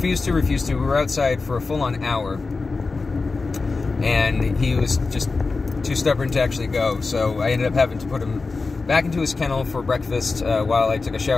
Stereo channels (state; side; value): quieter; right; 4.0 dB